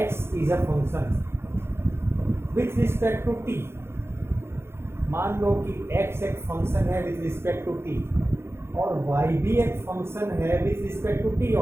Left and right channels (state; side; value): late; left; 0.12 ms